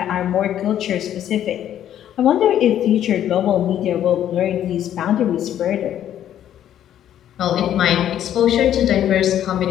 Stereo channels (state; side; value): quieter; right; 10.9 dB